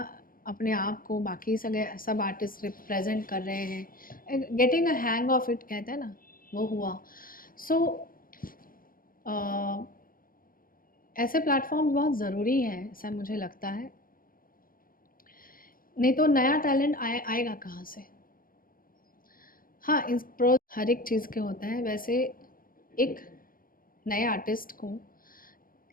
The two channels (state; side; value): late; right; 0.41 ms